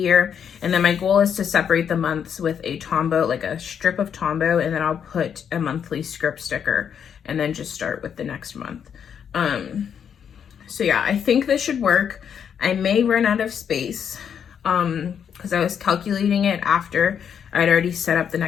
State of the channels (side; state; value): right; quieter; 7.9 dB